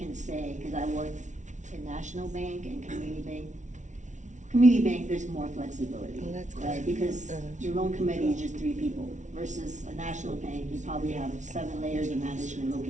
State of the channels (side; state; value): left; late; 0.36 ms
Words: say, because I work in National Bank and Community Bank. Community Bank, there's more flexibility, Oh, that's good. right? Because your loan committee is just 3 people versus a National Bank, you probably have 7 layers of management